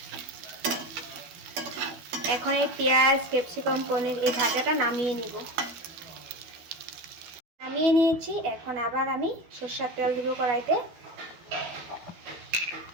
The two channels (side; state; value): left; late; 12 ms